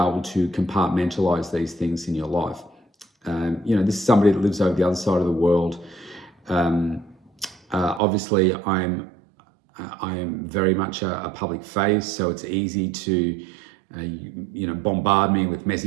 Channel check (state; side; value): drops out; left; at 8.0 s